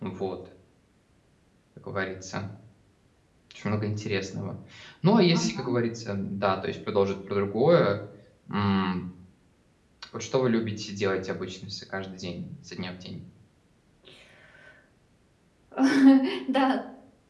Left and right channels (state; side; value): identical; both; correlation 1.00